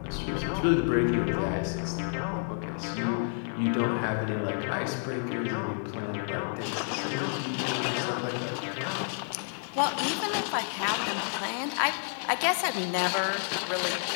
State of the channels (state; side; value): silent; right; 58 dB below the other